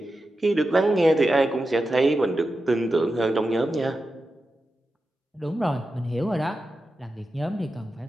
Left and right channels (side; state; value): both; normal; correlation 0.91